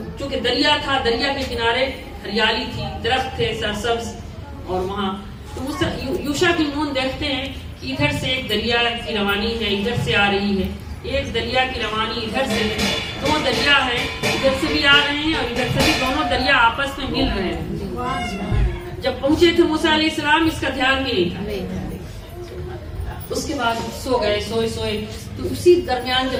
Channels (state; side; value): identical; both; correlation 1.00